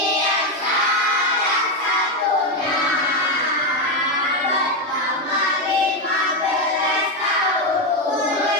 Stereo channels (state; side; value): normal; both; correlation 0.08